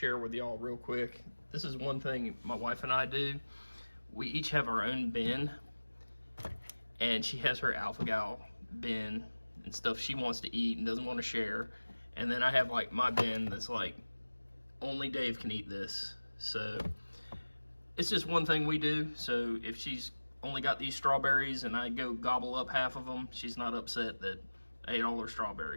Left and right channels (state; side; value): inverted; both; correlation -1.00